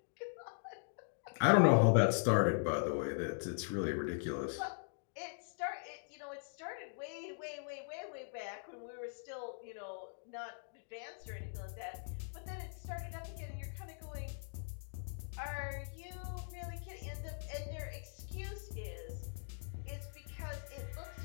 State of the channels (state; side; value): silent; right; digital silence